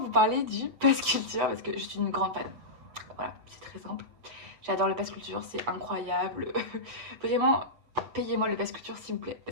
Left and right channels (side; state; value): left; late; 7.9 ms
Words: parler du Pass Culture parce que je suis une grande fan. Voilà, c'est très simple. J'adore le Pass Culture, c'est incroyable. Vraiment, payez-moi le Pass Culture s'il vous plaît